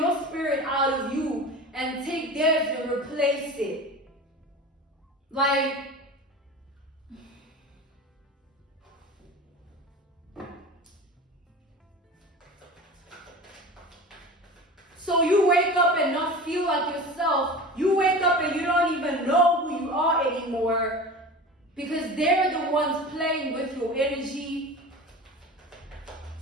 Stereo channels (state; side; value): normal; both; correlation 0.33